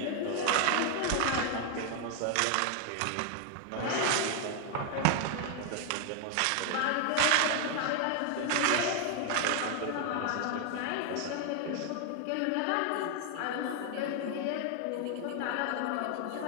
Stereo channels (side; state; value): both; different; correlation 0.00